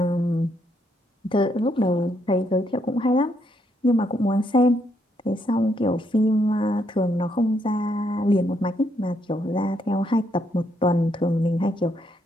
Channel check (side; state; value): both; normal; correlation 0.75